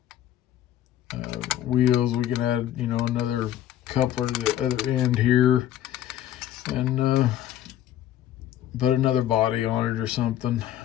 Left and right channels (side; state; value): right; quieter; 11.9 dB